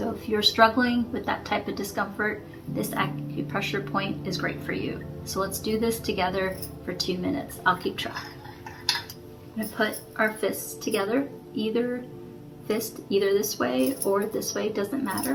if you're struggling with that type of discomfort, this acupressure point is great for you. So let's do this together for 2 minutes. I'll keep track. I'm going to put our fists together, either fist either this way or this way, doesn't matter.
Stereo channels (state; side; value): identical; both; correlation 1.00